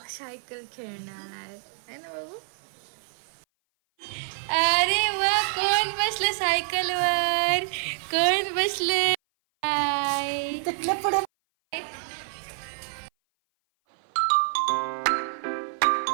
सायकल खेळणार आहे ना बाबू. अरे वा, कोण बसलं सायकलवर? कोण बसले?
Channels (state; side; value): silent; left; 56 dB below the other